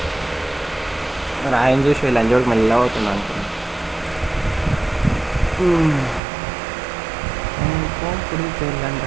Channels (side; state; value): left; drops out; at 6.2 s